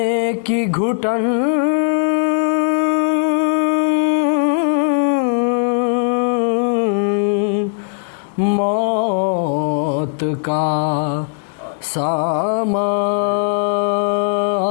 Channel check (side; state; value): right; silent; digital silence